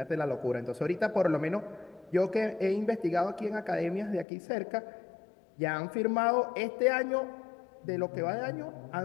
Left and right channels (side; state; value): right; drops out; at 4.2 s